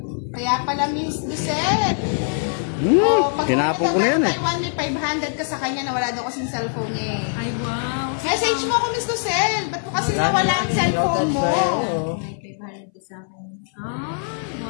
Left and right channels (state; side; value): silent; right; 61 dB below the other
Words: Kaya pala Miss Lucel. Pag Tinapon ko na yan eh. Taiwan, may 500 ka sa kanya na wala daw kasing cellphone niya eh. Ay, wow. Message mo ako, Miss Lucel. Ba't mo kasi nawala ang cellphone mo? May 500 ka sa akin. Ah,